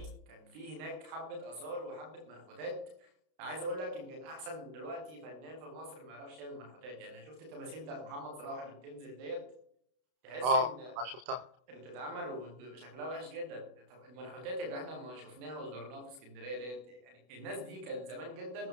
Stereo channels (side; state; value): left; late; 32 ms